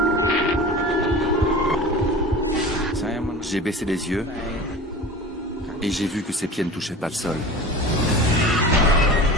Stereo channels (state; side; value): normal; both; correlation 0.35